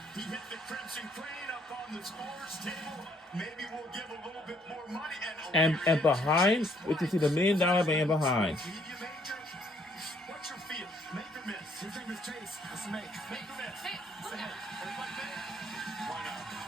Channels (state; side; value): normal; both; correlation 0.66